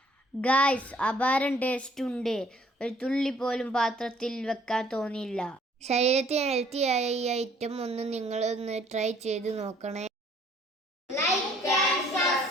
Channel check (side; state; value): both; normal; correlation 0.60